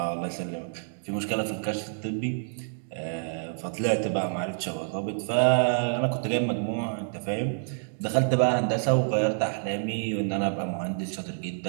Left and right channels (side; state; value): left; silent; digital silence